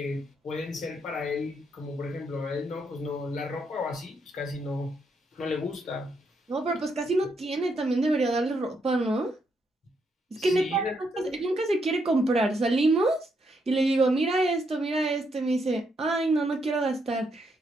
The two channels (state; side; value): normal; both; correlation 0.77